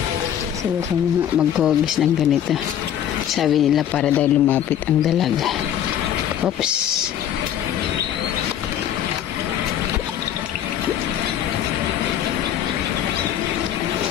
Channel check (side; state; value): right; quieter; 10.3 dB